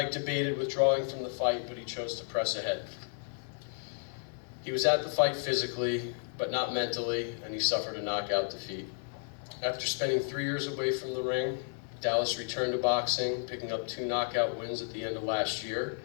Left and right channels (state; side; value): silent; right; 56 dB below the other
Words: debated withdrawing from the fight, but he chose to press ahead. He was at the fight physically, but not mentally, and he suffered a knockout defeat. After spending 3 years away from the ring, Dallas returned to boxing, picking up 2 knockout wins at the end of last year.